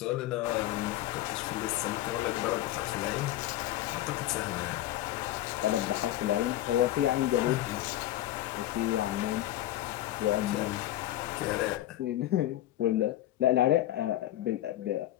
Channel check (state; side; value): quieter; right; 14.2 dB